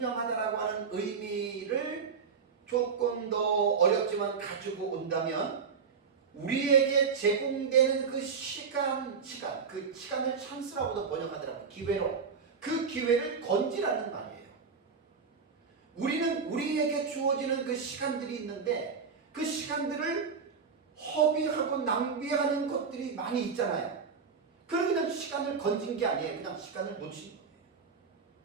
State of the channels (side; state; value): left; quieter; 5.7 dB